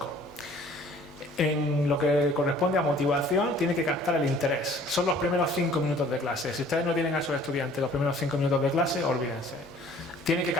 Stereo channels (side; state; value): both; normal; correlation 0.54